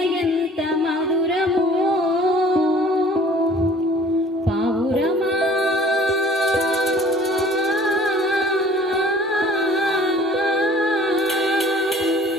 ఎంత మధురమో, పావురమా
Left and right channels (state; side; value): normal; both; correlation 0.51